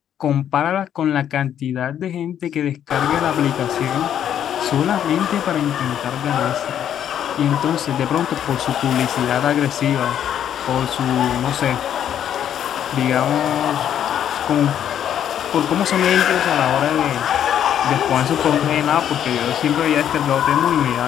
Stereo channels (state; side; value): quieter; right; 9.8 dB